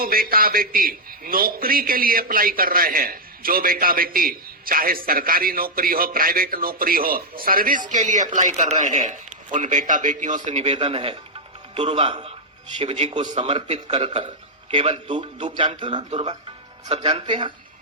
बेटा बेटी नौकरी के लिए अप्लाई कर रहे हैं, जो बेटा बेटी चाहे सरकारी नौकरी हो, प्राइवेट नौकरी हो, सर्विस के लिए अप्लाई कर रहे हैं, उन बेटा बेटियों से निवेदन है, दुर्वा शिव जी को समर्पित कर कर, केवल दूब जानते हो ना, दुर्वा सब जानते हैं।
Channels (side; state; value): both; normal; correlation -0.03